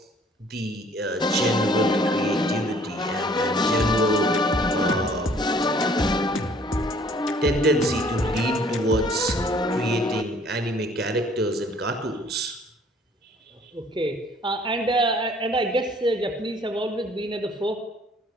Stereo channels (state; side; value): normal; both; correlation 0.57